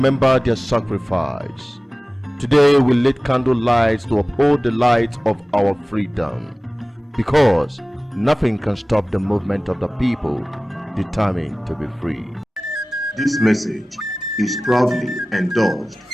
their sacrifice. Today we lit candle lights to uphold the light of our freedom, because nothing can stop the movement of the people determined to be free. This message is proudly endorsed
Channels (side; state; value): both; normal; correlation 0.98